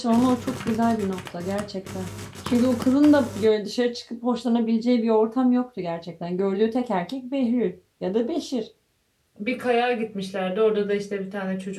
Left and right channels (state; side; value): identical; both; correlation 1.00